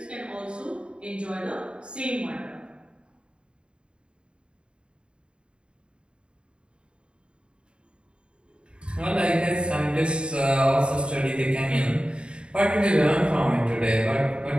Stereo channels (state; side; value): late; left; 0.053 ms